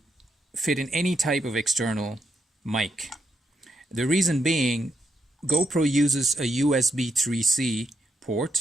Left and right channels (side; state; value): both; normal; correlation 0.80